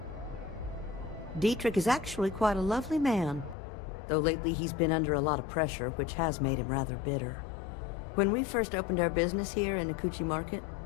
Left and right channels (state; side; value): drops out; right; at 3.6 s